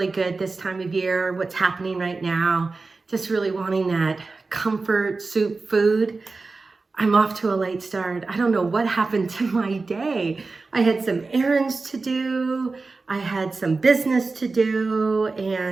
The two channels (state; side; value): quieter; left; 3.9 dB